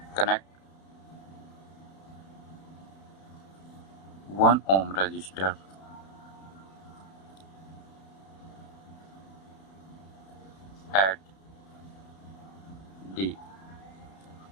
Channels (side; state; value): right; late; 31 ms